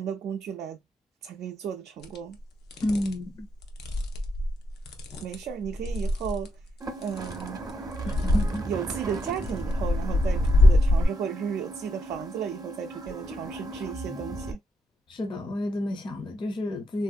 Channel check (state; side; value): normal; both; correlation 0.79